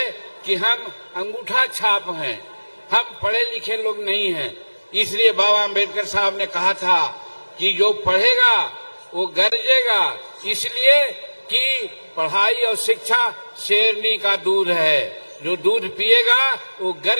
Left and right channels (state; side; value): inverted; both; correlation -1.00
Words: कि हम अंगूठा छाप हैं, हम पढ़े लिखे लोग नहीं हैं। इसलिए बाबा आम्बेडकर साहब ने कहा था कि जो पढ़ेगा वो गरजेगा, इसलिए कि पढ़ाई और शिक्षा शेरनी का दूध है, जो दूध पिएगा वो